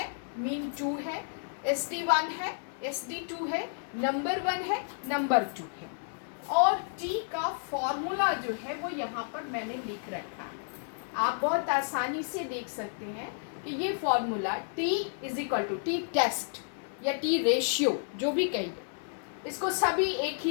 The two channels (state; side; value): silent; right; 57 dB below the other